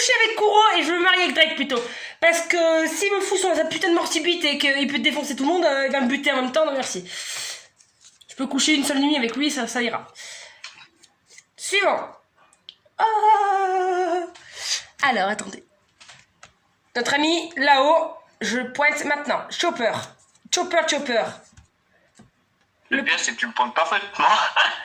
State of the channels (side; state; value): both; identical; correlation 1.00